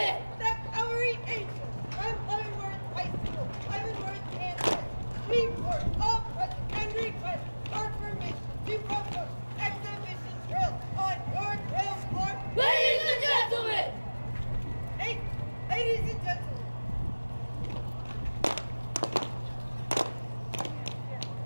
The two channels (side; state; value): both; inverted; correlation -1.00